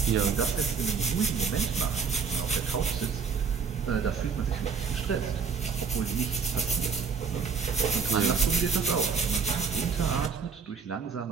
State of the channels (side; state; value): left; quieter; 5.8 dB